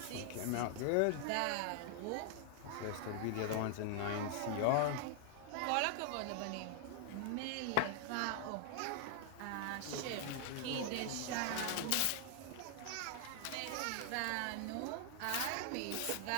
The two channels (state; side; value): different; both; correlation 0.00